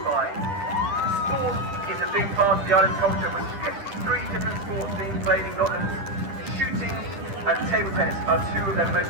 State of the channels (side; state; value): left; late; 10 ms